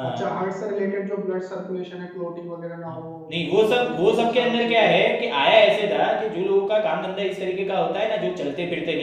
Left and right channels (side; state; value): both; identical; correlation 1.00